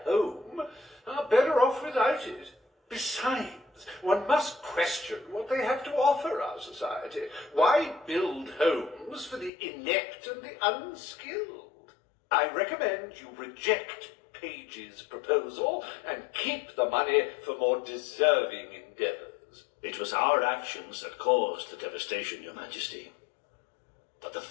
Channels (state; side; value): drops out; right; at 9.5 s